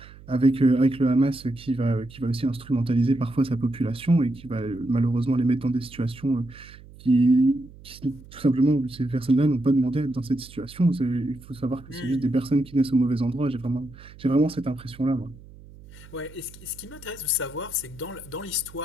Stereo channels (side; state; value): right; noise; hum, 20 dB below the sound